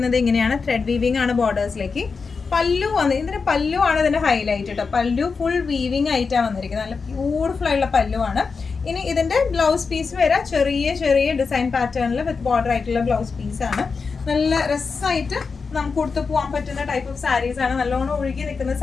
ഇങ്ങനെയാണ്. ത്രെഡ് വീവിംഗ് ആണ് ബോർഡേഴ്സിലേക്ക്. പല്ലു ഇതിന്റെ പല്ലു ആണ് ഇതിന്റെ ഹൈലൈറ്റ് കേട്ടോ. പല്ലു ഫുൾ വീവിംഗ് ആയിട്ടാണ് വന്നിരിക്കുന്നത്. നല്ല ബ്യൂട്ടിഫുൾ ആയിട്ടുള്ള പല്ലു ആണ്. ഇനി ഇതിന്റെ ബ്ലൗസ് പീസ് വരെ ചെറിയ ഡിസൈൻ പാറ്റേണിൽ വിത്ത് ബോർഡർ ആയിട്ടുള്ള ബ്ലൗസ് പീസ് ആണ്. നല്ല രസമായിട്ട് നമുക്ക് കൊടുത്തു പോകാൻ പറ്റുന്ന ടൈപ്പ് ഓഫ് സാരീസ് ആണ്. നല്ലോണം ഒഴുകി നിൽക്കുന്ന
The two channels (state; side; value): quieter; right; 4.9 dB